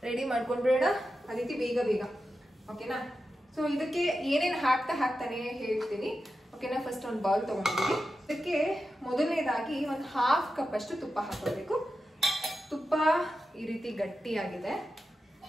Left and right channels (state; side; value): normal; both; correlation 0.90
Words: ರೆಡಿ ಮಾಡ್ಕೊಂಡ್ಬಿಡೋಣ. ಅದಿತಿ ಬೇಗ ಓಕೆನಾ? ಸೊ ಇದಕ್ಕೆ ಏನೇನು ಹಾಕ್ತಾನೆ ಹೇಳ್ತೀನಿ. ಓಕೆನಾ? ಫಸ್ಟ್ ಒಂದು ಬೌಲ್ ತಗೊಂಡಿದ್ದೀನಿ. ಇದಕ್ಕೆ ಮೊದಲನೇದಾಗಿ ಒಂದು 1/2 ಕಪ್ ಅಷ್ಟು ತುಪ್ಪ ಹಾಕೋಬೇಕು. ತುಪ್ಪ ಈ ರೀತಿ ಗಟ್ಟಿಯಾಗಿದೆ.